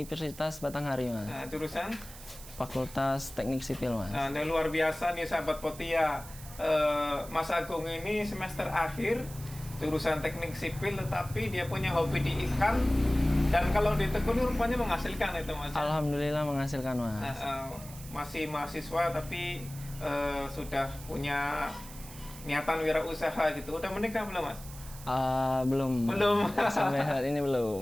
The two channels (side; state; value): right; noise; hiss, 16 dB below the sound